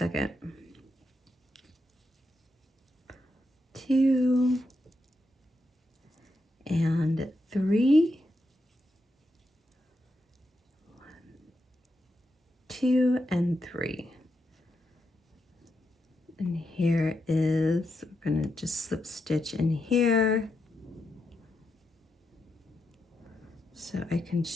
2 and 3. 1, 2 and 3. And here is, we're gonna just slip stitch in here so I can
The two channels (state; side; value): normal; both; correlation 0.84